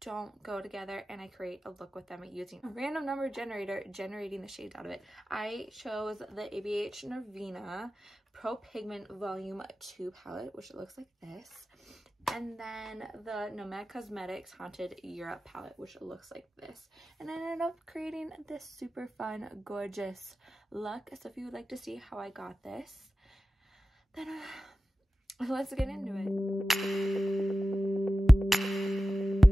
go together, and I create a look with them using a random number generator, generating the shades out of it. I chose the ABH Norvina Pro Pigment Volume 2 palette, which looks like this. And then the Nomad Cosmetics Haunted Europe palette, which looks like this. And I ended up creating this super fun, gorgeous look. So if you would like to see how I got this, then let's get into it.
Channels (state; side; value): normal; both; correlation 0.95